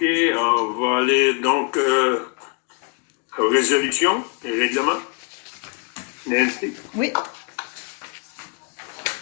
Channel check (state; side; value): quieter; right; 35.7 dB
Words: on va aller donc aux résolutions et règlements. Nancy? Oui.